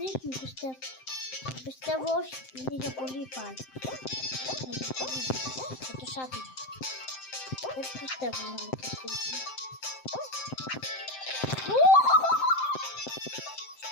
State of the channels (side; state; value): right; late; 7.7 ms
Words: πιστεύω. Πιστεύω όχι, είναι για πολύ πάλι. Θα το σάτουμε. Δεν πιστεύω να με κερδίσουμε.